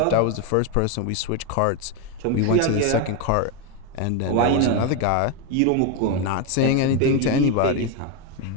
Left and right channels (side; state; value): both; different; correlation 0.02